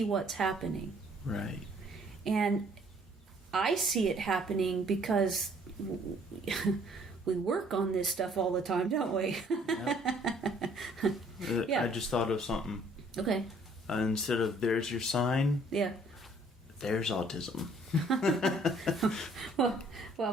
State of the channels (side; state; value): both; normal; correlation 0.60